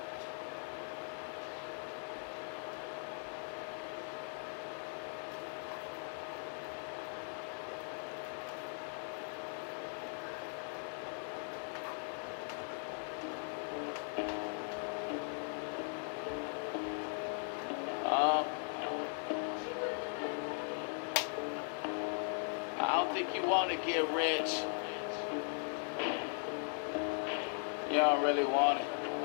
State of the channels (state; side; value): silent; right; 52 dB below the other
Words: I don't think you want to get rich. You don't really want it.